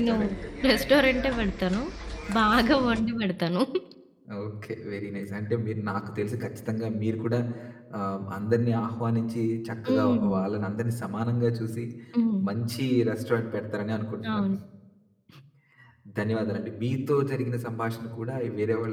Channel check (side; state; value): both; identical; correlation 1.00